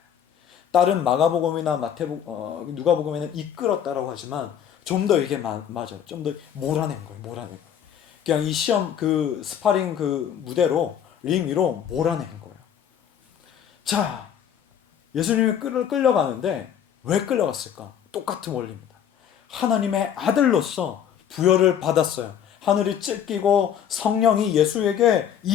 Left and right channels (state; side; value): quieter; right; 9.0 dB